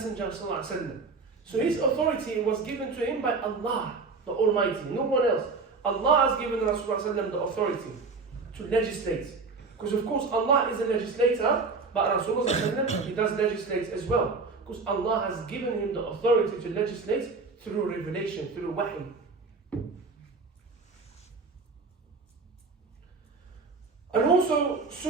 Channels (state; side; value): quieter; left; 4.3 dB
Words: sallallahu alaihi wasallam. So His authority was given to Him by Allah, the Almighty, no one else. Allah has given Rasulullah sallallahu alaihi wasallam the authority to legislate. Because of course Allah is a legislator, but Rasulullah sallallahu alaihi wasallam, he does legislate as well. Because Allah has given him the authority to legislate through revelation, through wahy. And also